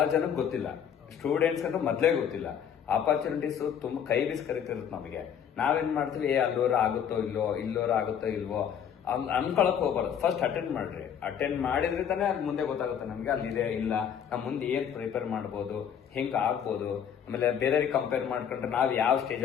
ಜನಕ್ಕೆ ಗೊತ್ತಿಲ್ಲ. ಸ್ಟೂಡೆಂಟ್ಸ್ ಅಂತ ಮೊದ್ಲೇ ಗೊತ್ತಿಲ್ಲ. ಆಪರ್ಚುನಿಟೀಸ್ ತುಂಬಾ ಕೈ ಬೀಸ್ ಕರಿತಿರುತ್ತೆ ನಮಗೆ. ನಾವೇನ್ ಮಾಡ್ತೀವಿ, ಅಲ್ಲೋರ ಆಗುತ್ತೋ ಇಲ್ವೋ, ಇಲ್ಲೋರ ಆಗುತ್ತೋ ಇಲ್ವೋ ಅನ್ಕೊಳಕ್ ಹೋಗ್ಬಾರ್ದು. ಫಸ್ಟ್ ಅಟೆಂಡ್ ಮಾಡ್ರಿ. ಅಟೆಂಡ್ ಮಾಡಿದ್ರೆ ತಾನೇ ಅಲ್ಲಿ ಮುಂದೆ ಗೊತ್ತಾಗುತ್ತೆ ನಮ್ಗೆ ಅಲ್ಲಿದೆ ಇಲ್ಲ, ನಮ್ ಮುಂದೆ ಏನ್ ಪ್ರಿಪೇರ್ ಮಾಡ್ಬೋದು, ಹೆಂಗ್ ಆಗ್ಬೋದು, ಆಮೇಲೆ ಬೇರೆಯವ್ರಿಗೆ ಕಂಪೇರ್ ಮಾಡ್ಕೊಂಡ್ರೆ ನಾವ್ ಯಾವ ಸ್ಟೇಜ್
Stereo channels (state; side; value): quieter; right; 8.4 dB